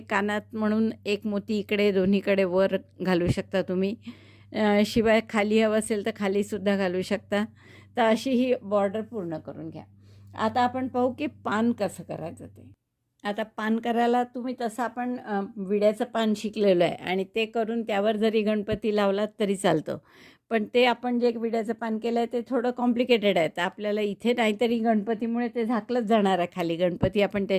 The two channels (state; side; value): identical; both; correlation 1.00